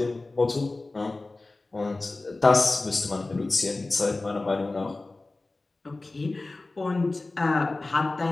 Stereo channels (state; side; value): quieter; right; 3.2 dB